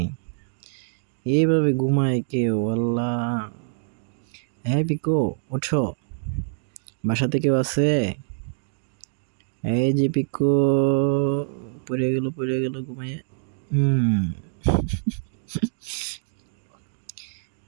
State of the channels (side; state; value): left; silent; digital silence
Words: এইভাবে ঘুমায় কেউ? আল্লাহ। হ্যাঁ পিকো, ওঠো, বাসাতে কেউ আছে? এই যে পিকো, পড়ে গেল ঘুমাইয়ে।